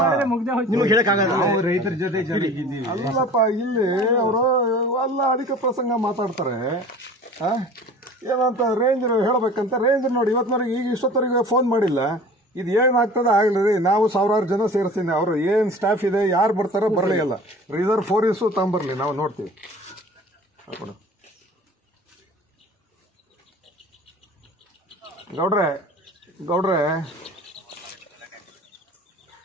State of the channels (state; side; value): normal; both; correlation 0.43